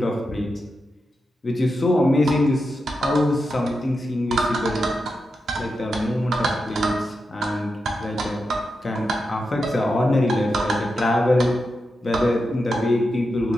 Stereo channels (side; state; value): both; normal; correlation 0.88